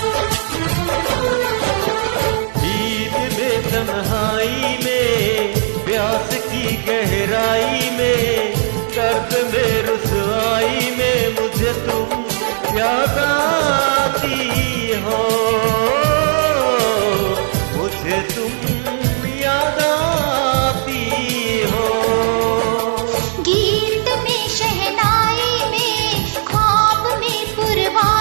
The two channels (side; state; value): left; silent; 63 dB below the other